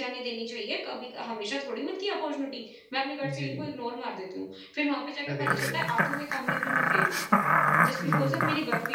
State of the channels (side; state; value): both; identical; correlation 1.00